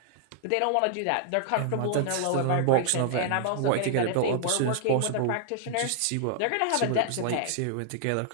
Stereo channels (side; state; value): both; different; correlation -0.01